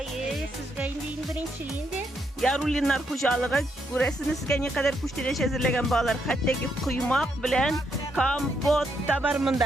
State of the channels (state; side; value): normal; both; correlation 0.77